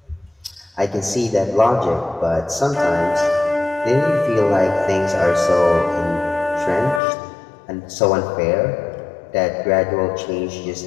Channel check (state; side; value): drops out; right; at 7.0 s